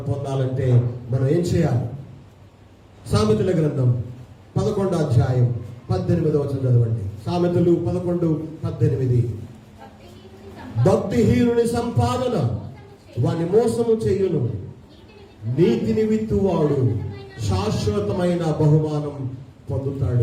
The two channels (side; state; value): both; identical; correlation 1.00